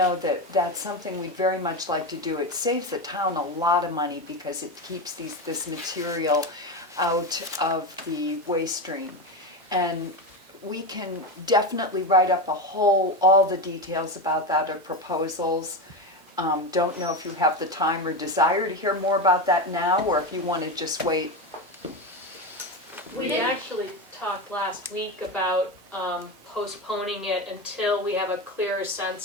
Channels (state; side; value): normal; both; correlation 0.17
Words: that that's something we'd very much like to do. It saves the town a lot of money because it keeps this material out of the waste stream. And we can definitely write up all the details about that or proposals. Don't know if you have the time or desire to hear more about that now, or if you want to just wait. We actually talked last week about postponing it until we have a clearer